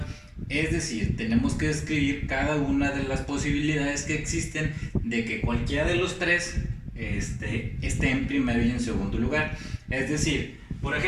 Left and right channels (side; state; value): both; identical; correlation 1.00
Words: Es decir, tenemos que describir cada una de las posibilidades que existen de que cualquiera de los tres esté en primero y en segundo lugar. Es decir, por